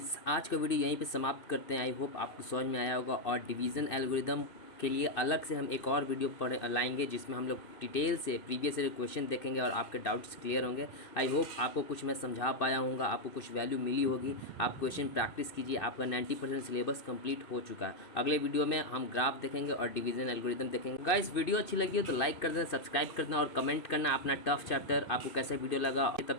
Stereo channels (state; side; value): late; right; 2.5 ms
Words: आज का वीडियो यहीं पे समाप्त करते हैं। आई होप आपको समझ में आया होगा, और डिवीज़न एल्गोरिदम के लिए अलग से हम एक और वीडियो लाएंगे जिसमें हम लोग डिटेल से प्रीवियस ईयर क्वेश्चन देखेंगे और आपके डाउट्स क्लियर होंगे। आई होप आपको कुछ मैं समझा पाया हूँगा, आपको कुछ वैल्यू मिली होगी। आप क्वेश्चन प्रैक्टिस कीजिए, आपका 90% सिलेबस कंप्लीट हो चुका है। अगले वीडियो में हम ग्राफ देखेंगे और डिवीज़न एल्गोरिदम देखेंगे। गाइस वीडियो अच्छी लगी हो तो लाइक कर देना, सब्सक्राइब कर देना और कमेंट करना अपना टफ चैप्टर आपको कैसा वीडियो लगा। तब